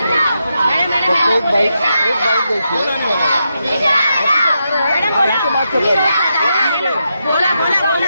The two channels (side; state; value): both; inverted; correlation -0.84